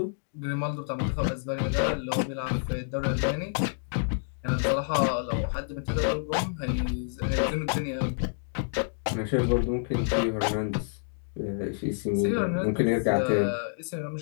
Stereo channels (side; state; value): right; silent; digital silence